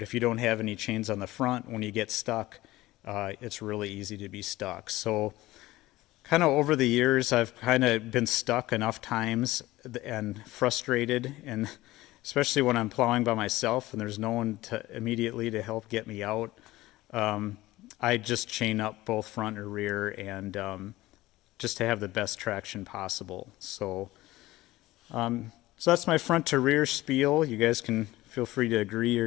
if you don't have any chains on the front, when you get stuck, it's really easy to be stuck. So kind of over the years, I've kind of been stuck enough times and frustrated, and especially when I'm plowing by myself and there's no one to immediately to help get me out. I just chain up both front or rear, and just to have the best traction possible. So that's my front to rear spiel. You guys can feel free to agree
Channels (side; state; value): right; quieter; 17.8 dB